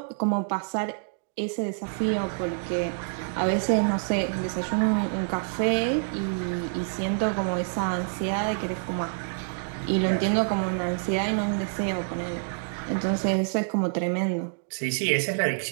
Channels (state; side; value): silent; left; digital silence